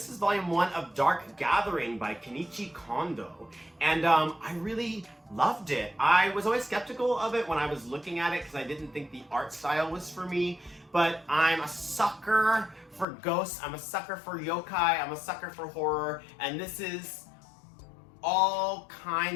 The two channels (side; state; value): right; drops out; at 13.1 s